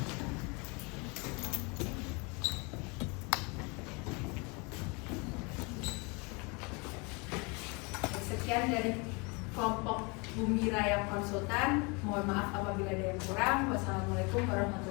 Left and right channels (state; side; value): quieter; right; 29.7 dB